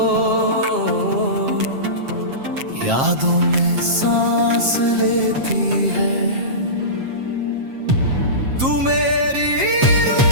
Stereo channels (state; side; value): late; left; 7.5 ms